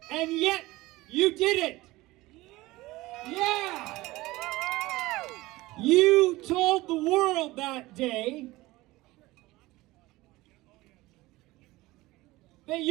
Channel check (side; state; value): left; quieter; 19.4 dB